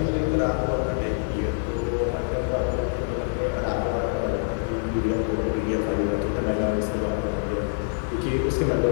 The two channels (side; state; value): right; silent; digital silence